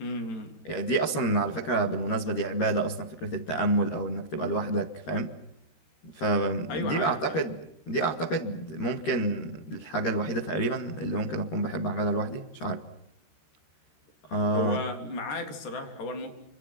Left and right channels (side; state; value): right; late; 13 ms